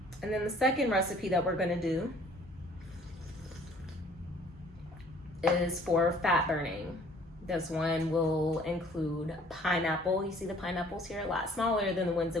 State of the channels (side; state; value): both; normal; correlation 0.55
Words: And then the second recipe that we're gonna do is for fat burning. This one will include pineapple. You see the pineapples here, a lot smaller than the ones